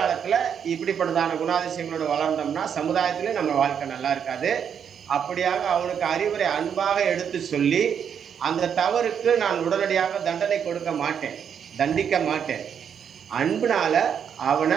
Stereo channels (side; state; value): left; quieter; 7.8 dB